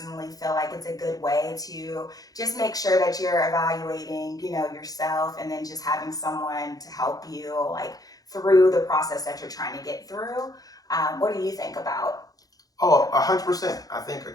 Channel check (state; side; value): late; right; 0.18 ms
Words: feel like it's a good way to just make sure that you're evaluating, yourself, and then just having someone to help you through the process that you're trying to get through. What do you think about? Oh, 100%. I think